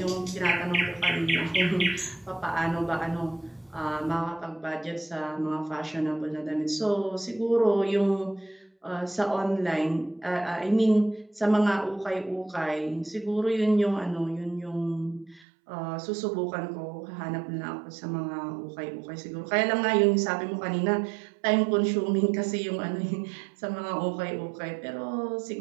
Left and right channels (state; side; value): drops out; left; at 15.5 s